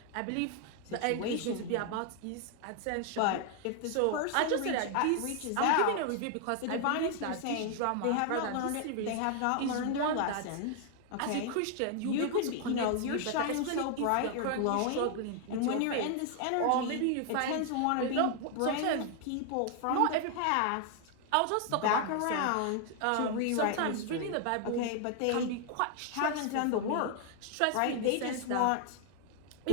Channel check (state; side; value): different; both; correlation 0.00